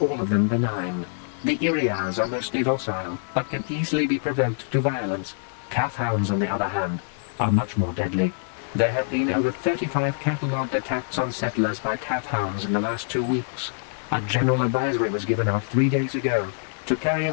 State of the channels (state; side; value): silent; right; digital silence